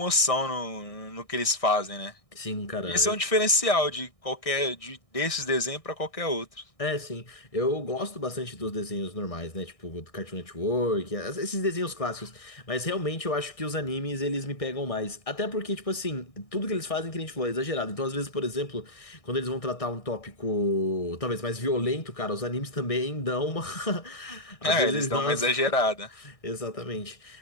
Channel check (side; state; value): right; late; 1.6 ms